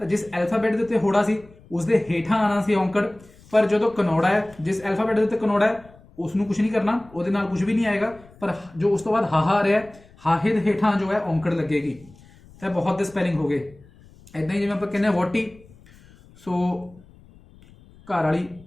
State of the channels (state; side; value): noise; left; rumble, 25 dB below the sound